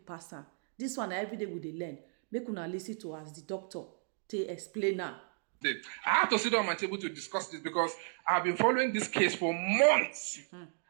pass am. This one na everyday we dey learn. Make una lis ten to as the doctor take explain am. I have to sit down my table to discuss this because I've been following this case for months.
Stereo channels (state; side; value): silent; left; 55 dB below the other